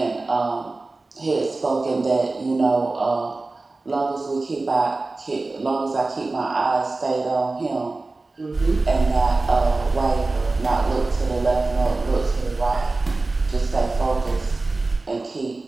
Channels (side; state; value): left; quieter; 3.3 dB